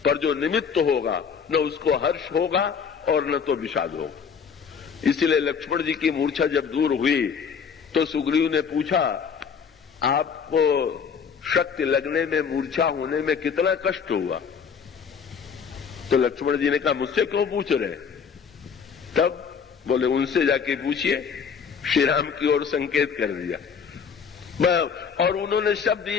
पर जो निमित्त होगा न उसको हर्ष होगा और न तो विषाद होगा। इसलिए लक्ष्मण जी की मूर्छा जब दूर हुई तो सुग्रीव ने पूछा, आपको शक्ति लगने में, मूर्छा होने में कितना कष्ट हुआ? तो लक्ष्मण जी ने कहा, मुझसे क्यों पूछ रहे? तब बोले, उनसे जाके पूछिए। श्री राम की ओर संकेत कर दिया और उन्होंने शब्द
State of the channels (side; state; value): right; quieter; 6.4 dB